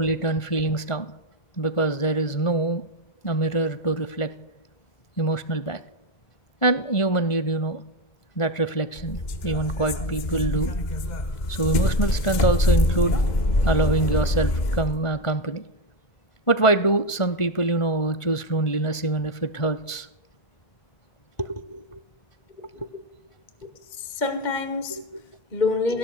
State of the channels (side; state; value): right; late; 1.5 ms